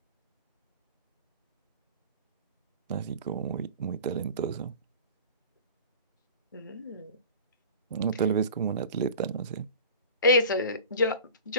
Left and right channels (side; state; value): both; inverted; correlation -0.38